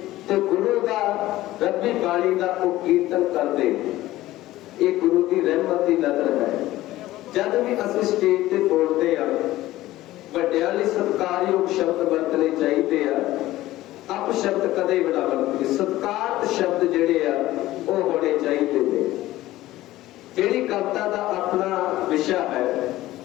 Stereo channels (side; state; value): right; quieter; 16.1 dB